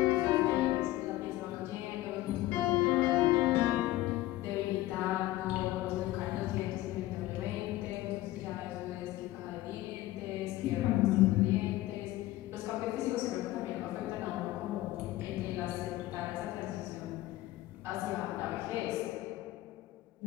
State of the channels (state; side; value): quieter; right; 16.4 dB